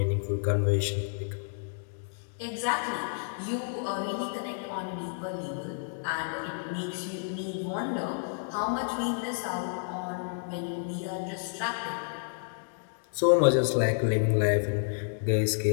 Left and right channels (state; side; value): silent; right; digital silence